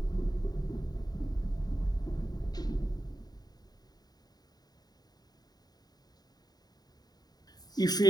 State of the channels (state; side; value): late; right; 0.19 ms